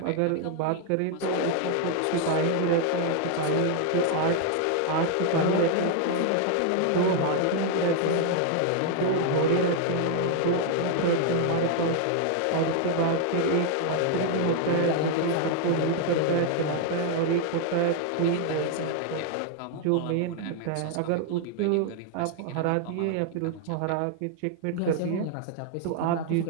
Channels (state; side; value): different; both; correlation 0.00